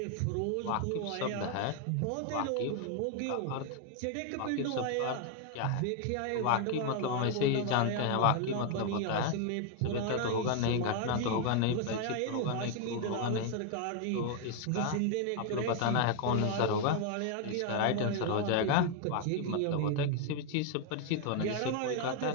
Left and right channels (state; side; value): different; both; correlation 0.00